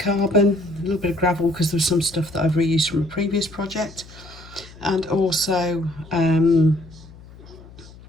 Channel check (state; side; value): noise; left; hum, 20 dB below the sound